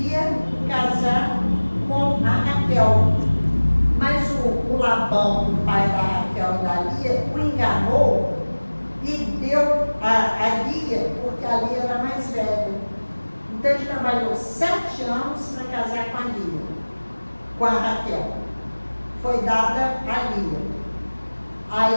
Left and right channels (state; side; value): inverted; both; correlation -1.00